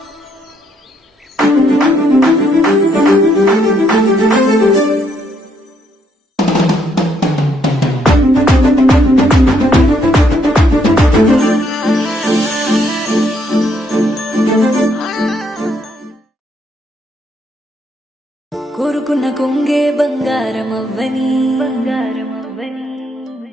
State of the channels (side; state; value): both; normal; correlation 0.72